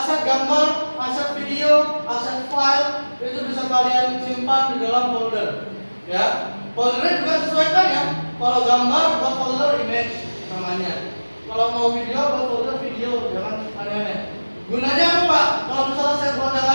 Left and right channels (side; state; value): both; inverted; correlation -1.00